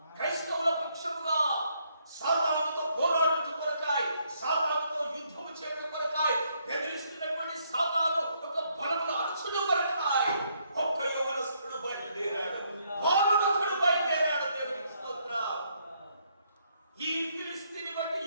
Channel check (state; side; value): inverted; both; correlation -0.72